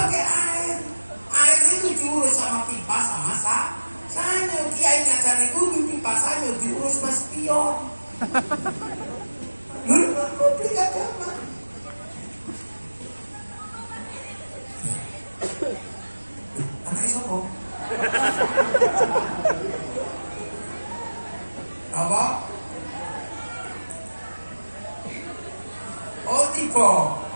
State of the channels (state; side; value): inverted; both; correlation -1.00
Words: air. Air itu diurus sama pipa sama sanyo. Kiai ngajarin wudhu pipa sanyo diurus mas pion. Lalu publik agama. Anaknya sopo? Apa? Oh tipe.